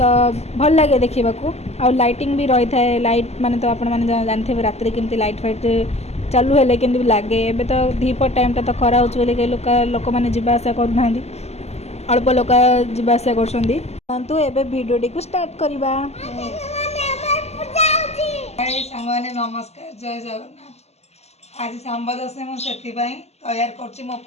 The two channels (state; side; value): late; right; 0.31 ms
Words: भल लगे देखा आ लाइटिंग भी रही है लाइट माने तो आपण मैंने जानते राति केमती लाइट फाइट चालू है कि लगे एवं तो दीपर टाइम तो खरा हो लोक मैंने जीवा आसा करना अल्प लोक जीवा आसा कर भिडियो को स्टार्ट करवा। सांगने नमस्कार जय जगन्नाथ। आज सांब दशमी मुझे तैयार कर मो